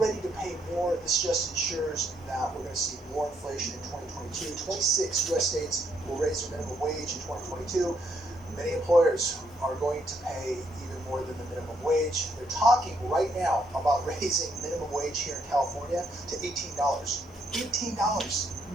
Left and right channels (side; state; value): both; normal; correlation 0.74